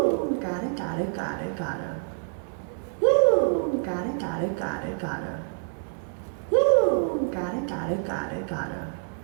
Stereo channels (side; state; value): left; silent; 60 dB below the other